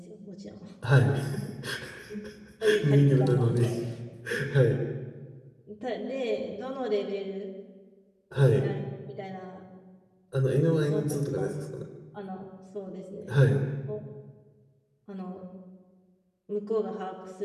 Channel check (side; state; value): both; identical; correlation 1.00